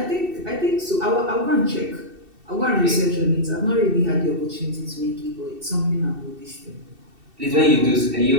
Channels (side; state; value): left; late; 2.7 ms